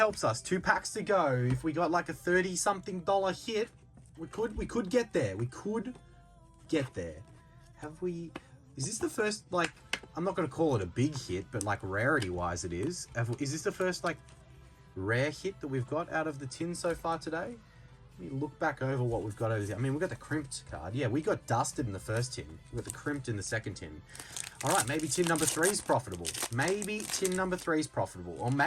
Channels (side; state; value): both; identical; correlation 1.00